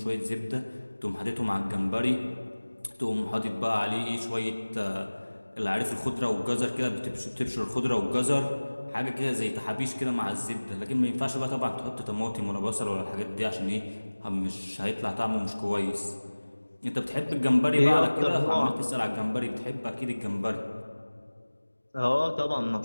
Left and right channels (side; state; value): both; inverted; correlation -1.00